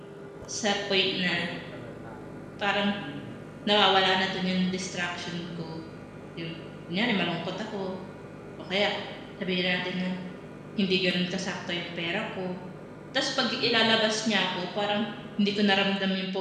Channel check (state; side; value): identical; both; correlation 1.00